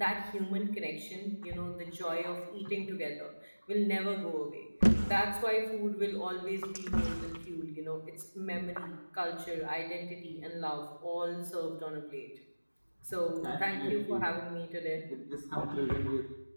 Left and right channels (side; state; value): both; inverted; correlation -1.00